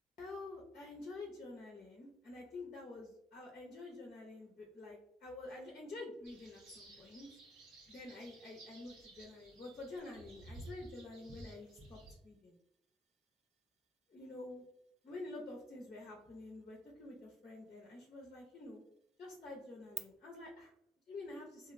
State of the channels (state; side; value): normal; both; correlation 0.69